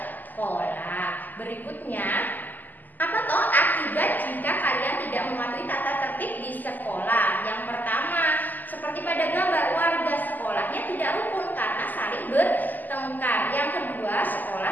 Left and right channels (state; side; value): late; right; 0.085 ms